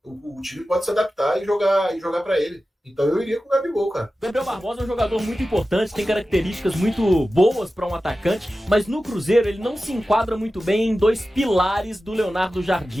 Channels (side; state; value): both; normal; correlation 0.94